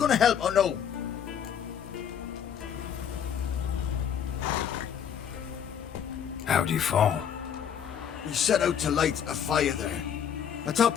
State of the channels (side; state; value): right; quieter; 8.5 dB